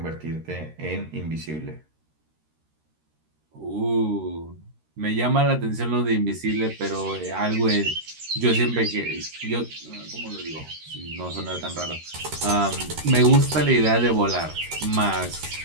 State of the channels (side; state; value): left; late; 13 ms